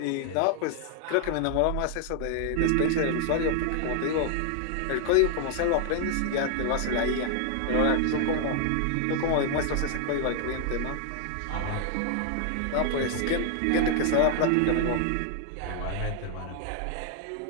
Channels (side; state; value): both; different; correlation 0.00